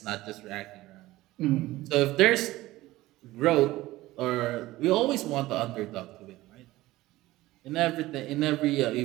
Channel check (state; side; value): quieter; left; 17.6 dB